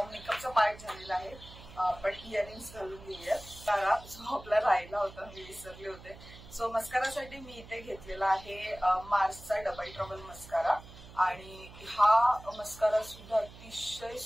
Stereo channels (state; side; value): noise; right; hum, 18 dB below the sound